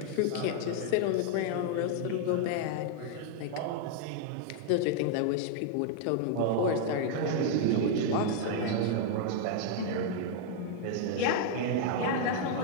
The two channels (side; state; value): both; different; correlation -0.01